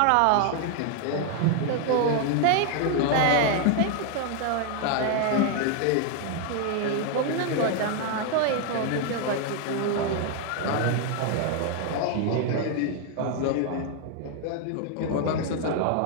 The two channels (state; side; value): different; both; correlation 0.00